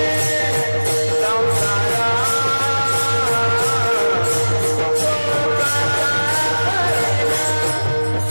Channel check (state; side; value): inverted; both; correlation -1.00